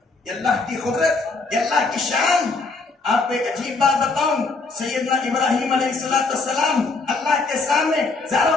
یہ اللہ کی قدرت، یہ اللہ کی شان۔ آپ کو ایک عجیب بات بتاؤں، سیدنا ابراہیم علیہ السلام اللہ کے سامنے زاروں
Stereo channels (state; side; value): quieter; right; 3.8 dB